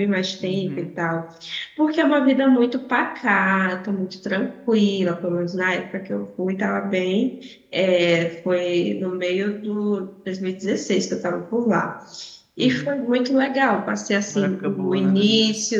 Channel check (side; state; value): both; identical; correlation 1.00